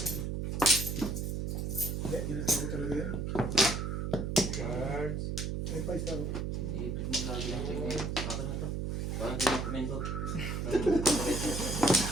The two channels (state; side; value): noise; right; hum, 2 dB below the sound